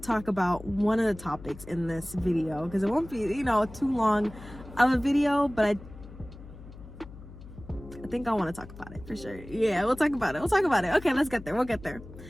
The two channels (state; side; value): noise; left; hum, 16 dB below the sound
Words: about one of the topics in this video because it won't be, you know, too long of a video, but I think I want to talk about it for sure. Yeah, we'll talk about it. Okay, let's get there. We'll get there.